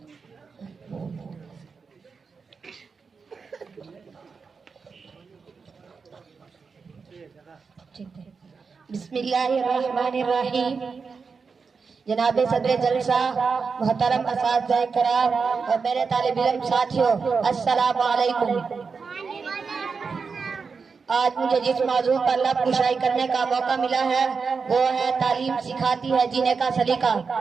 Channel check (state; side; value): quieter; left; 5.2 dB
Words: जनाब सदर जलसा, मोहतरम असातिज़ा कराम और मेरे तालिब इल्म साथियों, अस्सलामु अलैकुम। आज मुझे जिस मौजू पर लब कुशाई करने का मौका मिला है वो है तालीम सिखाती है जीने का सलीका।